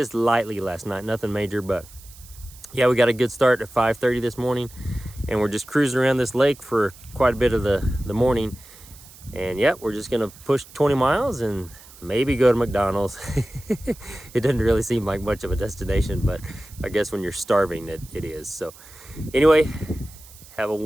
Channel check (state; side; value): noise; right; hiss, 21 dB below the sound